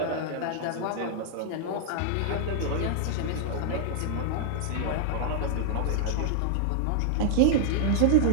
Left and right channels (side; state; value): both; different; correlation -0.01